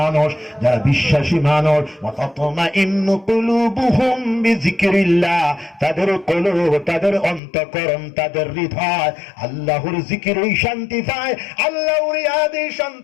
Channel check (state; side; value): drops out; right; at 7.4 s